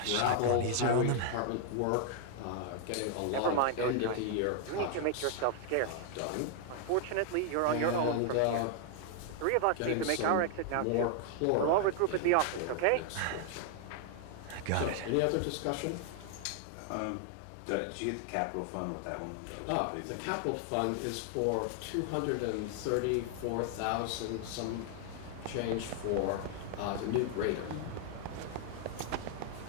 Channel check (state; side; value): different; both; correlation 0.00